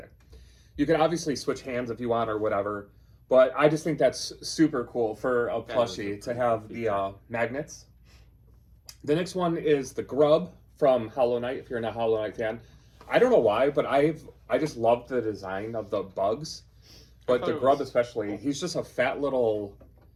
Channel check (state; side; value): identical; both; correlation 1.00